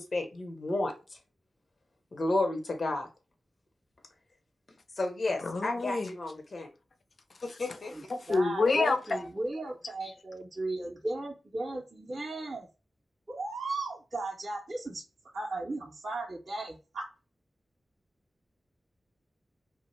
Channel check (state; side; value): normal; both; correlation 0.91